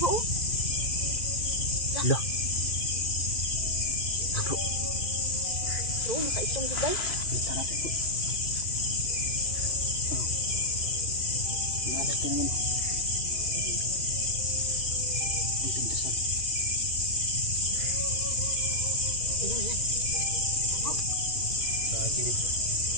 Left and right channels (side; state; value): right; late; 2.5 ms